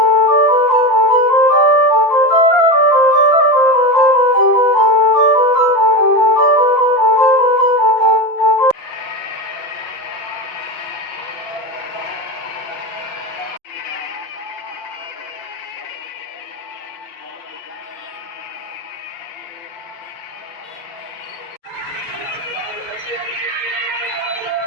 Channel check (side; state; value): right; late; 5.9 ms